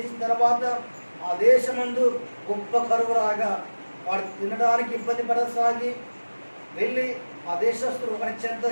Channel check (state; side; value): inverted; both; correlation -1.00